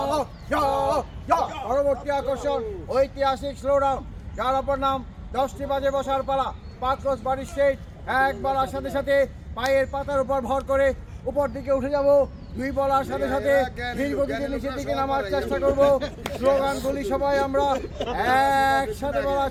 jog, jog. পরবর্তী আকর্ষণ ঐতিহাসিক স্লোডাউন যার অপর নাম 10টি বাজে বসার পালা পাক্রস বাড়ি স্ট্রেট এক বলার সাথে সাথে পায়ের পাতার উপর ভর করে উপর দিকে উঠে যাব দুই বলার সাথে সাথে ধীর গতিতে নিচের দিকে নামার চেষ্টা করব স্লোগানগুলি সবাই আমরা একসাথে বলার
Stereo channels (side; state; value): both; identical; correlation 1.00